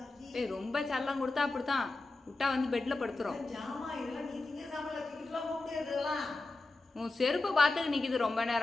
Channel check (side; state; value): right; quieter; 3.2 dB